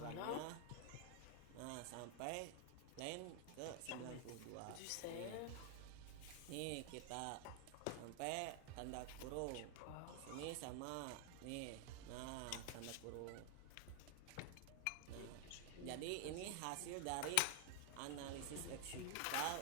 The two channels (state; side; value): different; both; correlation 0.00